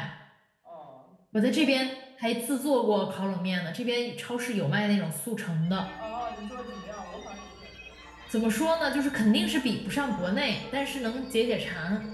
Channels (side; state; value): both; identical; correlation 1.00